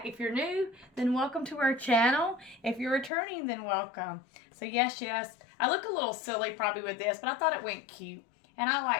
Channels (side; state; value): right; drops out; at 3.1 s